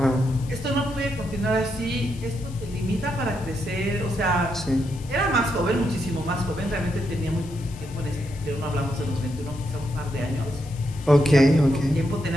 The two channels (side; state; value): left; noise; hiss, 21 dB below the sound